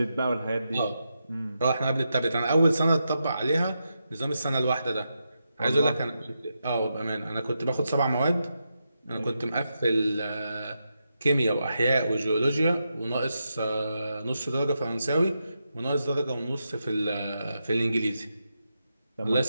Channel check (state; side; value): inverted; both; correlation -0.86